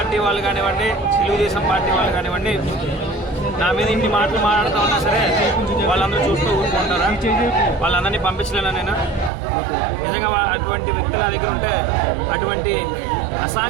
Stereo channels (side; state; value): left; drops out; at 9.3 s